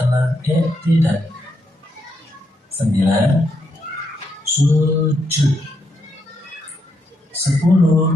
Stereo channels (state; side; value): normal; both; correlation 0.79